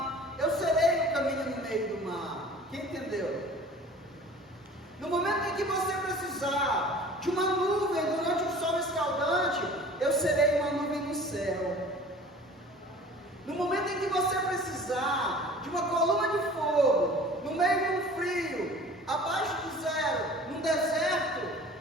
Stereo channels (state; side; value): normal; both; correlation 0.45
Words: eu serei o caminho no meio do mar. Quem entendeu? No momento em que você precisar de uma nuvem durante o sol escaldante, eu serei uma nuvem no céu. No momento em que você precisar de uma coluna de fogo, no meio de um frio, abaixo de zero, num deserto,